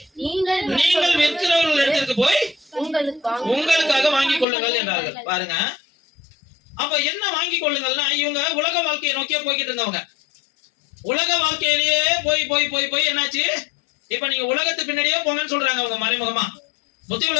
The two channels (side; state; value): right; drops out; at 4.5 s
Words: நீங்கள் விற்கிறவர்கள் இடத்திற்கு போய் உங்களுக்காக வாங்கிக் கொள்ளுங்கள் என்றார்கள். பாருங்க, அப்ப என்ன வாங்கிக் கொள்ளுங்கள்னா, இவங்க உலக வாழ்க்கையை நோக்கியே போய்கிட்டு இருந்தவங்க. உலக வாழ்க்கையிலேயே போய் போய் போய் போய் என்னாச்சு? இப்ப நீங்க உலகத்து பின்னாடியே போங்கன்னு சொல்றாங்க அவங்க மறைமுகமா. புத்தி